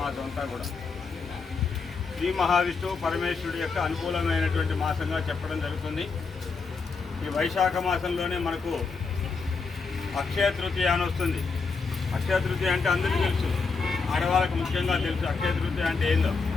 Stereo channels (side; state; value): right; quieter; 4.7 dB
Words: మాసం అంతా కూడా శ్రీ మహావిష్ణువు పరమేశ్వరుడి యొక్క అనుకూలమైనటువంటి మాసంగా చెప్పడం జరుగుతుంది. ఈ వైశాఖ మాసంలోనే మనకు అక్షయ తృతీయ అని వస్తుంది. అక్షయ తృతీయ అంటే అందరికీ తెలుసు, ఆడవాళ్ళకు ముఖ్యంగా తెలుసు. అక్షయ తృతీయ అంటే ఏందో